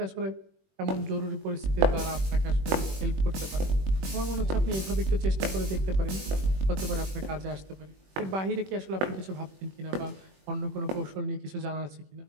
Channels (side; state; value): left; late; 21 ms